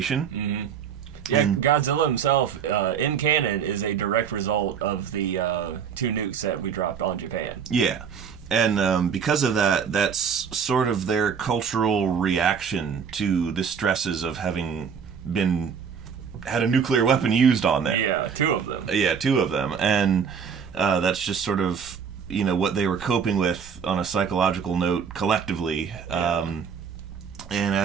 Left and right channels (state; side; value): quieter; left; 7.0 dB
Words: Yeah, Godzilla himself, in canon, is a direct result of the 2 nukes that we dropped on Japan. Yeah, and because of that, that's sort of their cultural reaction to the stresses of having had a nuclear weapon used on them. Yeah, 2 of them. Yeah, 2 of them, and that's just sort of, you know, what they were coping with on a psychological note collectively. And